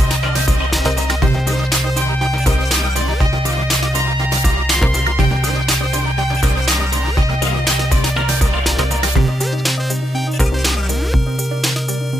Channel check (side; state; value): both; normal; correlation 0.83